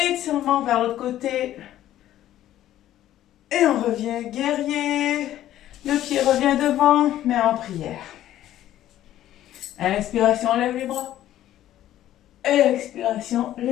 vers l'autre côté. Et on revient guerrier. Le pied revient devant, mais en prière. Inspiration, lève les bras. Expiration,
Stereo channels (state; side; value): quieter; right; 12.9 dB